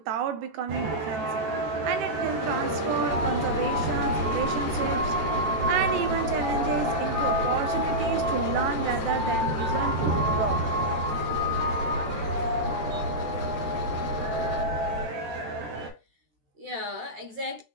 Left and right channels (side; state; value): left; late; 14 ms